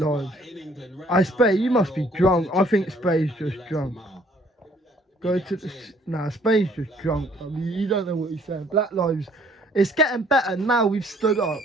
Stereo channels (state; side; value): normal; both; correlation 0.61